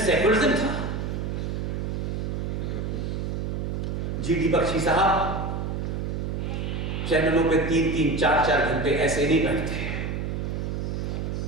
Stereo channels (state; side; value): noise; right; hum, 2 dB below the sound